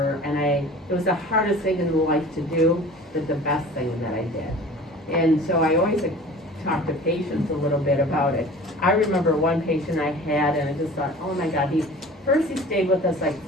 and it was the hardest thing in life to do, but the best thing that I did. And so I always talk to patients a little bit about it. I remember one patient I had, and I just thought, oh my God, he stayed with us like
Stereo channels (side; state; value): both; normal; correlation 0.43